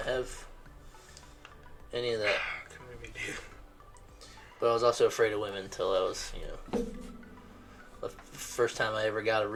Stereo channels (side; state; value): both; identical; correlation 1.00